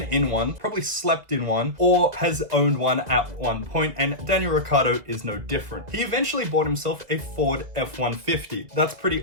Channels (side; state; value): left; late; 2.0 ms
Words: in one, probably slept in one, or has owned one at one point, and Daniel Ricciardo is no different. He eventually bought himself a Ford F-150. That's